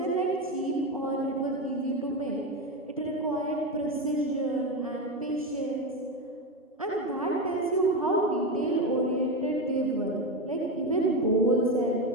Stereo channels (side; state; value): both; normal; correlation 0.15